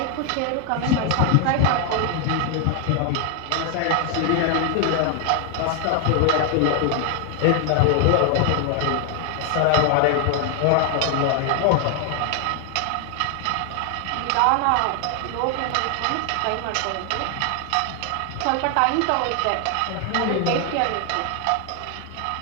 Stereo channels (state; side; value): different; both; correlation 0.00